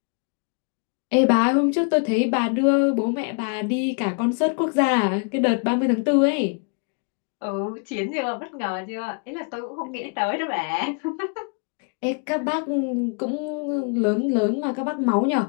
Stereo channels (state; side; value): quieter; right; 38.7 dB